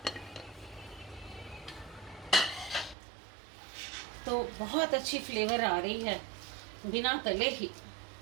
तो बहुत अच्छी फ्लेवर आ रही है बिना तले ही।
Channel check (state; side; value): drops out; left; at 3.0 s